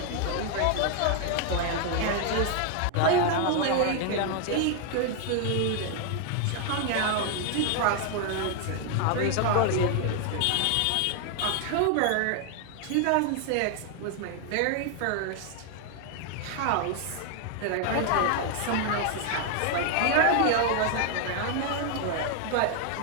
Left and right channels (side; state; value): both; different; correlation 0.00